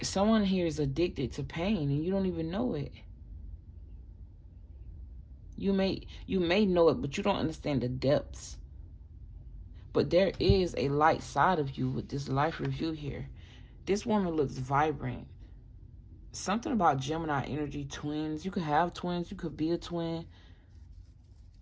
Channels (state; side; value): identical; both; correlation 1.00